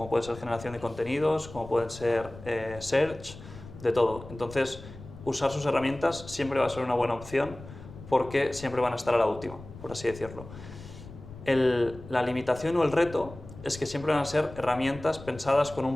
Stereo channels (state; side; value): noise; left; rumble, 16 dB below the sound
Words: puede ser generación de contenidos, como pueden ser search, de todo. Entonces, usar sus herramientas siempre va a ser una buena opción porque siempre van a estar a la última, por así decirlo. La limitación o el reto es que siempre van a ser herramientas pensadas con